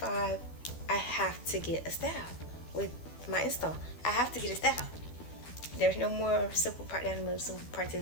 I have to get a style with my install. I have to get a style. There's no more simple part down the middle, simple part to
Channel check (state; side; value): late; right; 12 ms